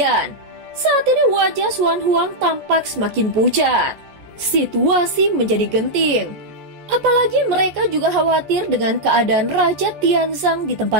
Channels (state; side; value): late; left; 14 ms